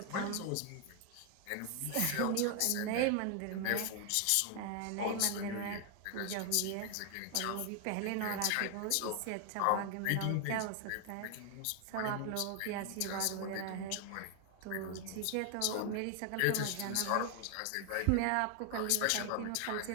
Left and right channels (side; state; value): both; different; correlation 0.00